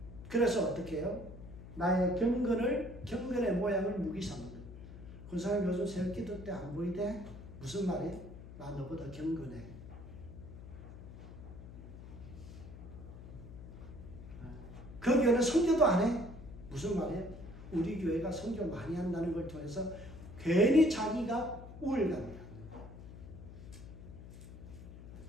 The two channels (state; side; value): noise; left; hum, 14 dB below the sound